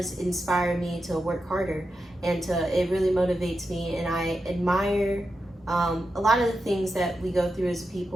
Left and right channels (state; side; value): normal; both; correlation 0.89